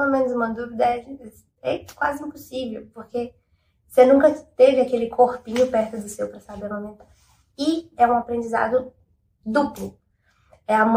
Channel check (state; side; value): identical; both; correlation 1.00